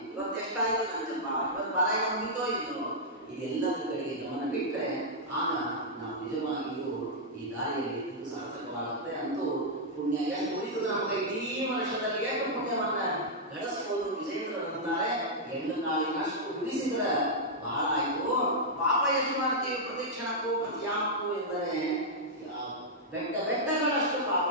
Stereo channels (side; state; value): both; normal; correlation -0.07